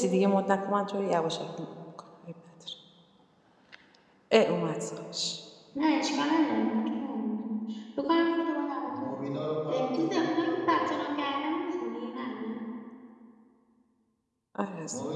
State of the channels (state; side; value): identical; both; correlation 1.00